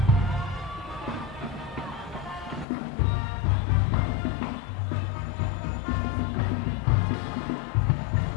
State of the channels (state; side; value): drops out; right; at 2.7 s